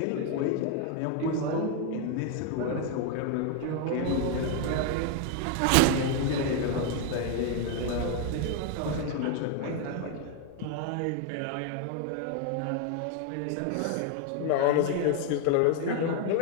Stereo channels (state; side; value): different; both; correlation 0.01